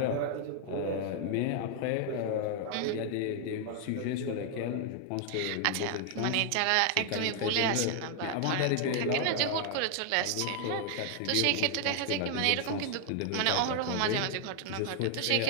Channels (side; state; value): both; different; correlation 0.00